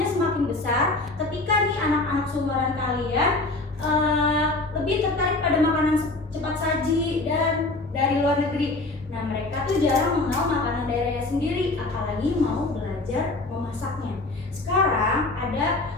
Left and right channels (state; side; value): quieter; right; 3.0 dB